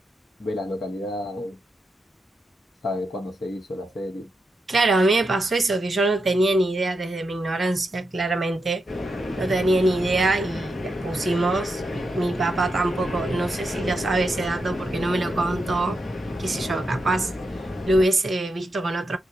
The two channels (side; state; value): both; normal; correlation 0.86